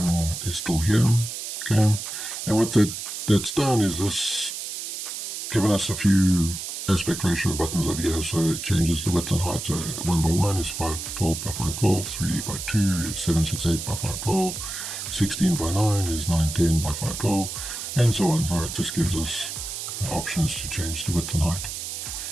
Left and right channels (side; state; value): right; noise; hiss, 6 dB below the sound